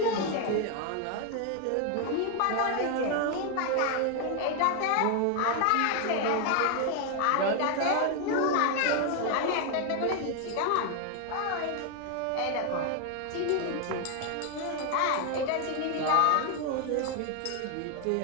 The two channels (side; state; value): both; different; correlation 0.01